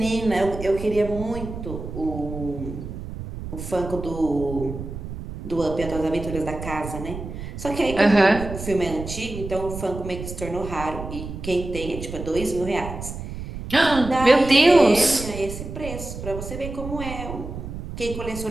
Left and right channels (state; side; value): noise; right; rumble, 9 dB below the sound